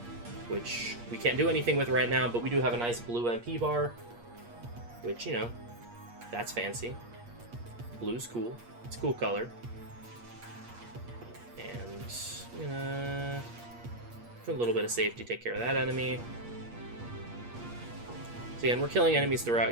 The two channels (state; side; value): late; left; 8.5 ms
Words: which we can't do anything with right now, but we do have a nice blue MP bar, which, you know, that's fancy. Blue's cool. It's a cool color. And, for a little bit of safety, take care of that enemy. So again, we're killing enemies